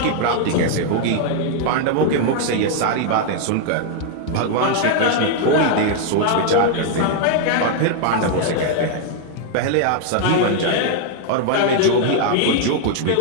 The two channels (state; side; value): different; both; correlation 0.00